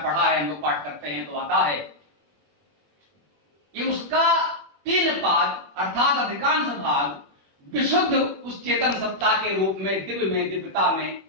पढ़ा है, हम लोग पाठ करते हैं तो आता है कि उसका 3 पाद अर्थात अधिकांश भाग विशुद्ध उस चेतन सत्ता के रूप में, दिव्यता में,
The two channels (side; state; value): left; late; 21 ms